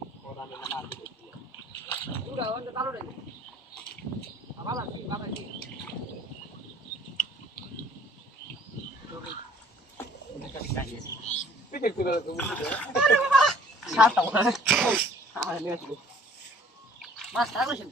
ওরা না মার দিবি পুরা ওটা চালু রে বাবা বাবা পিছে করে তুমি সাতটা আরে নে আসবে মাছ তারও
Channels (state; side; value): normal; both; correlation 0.55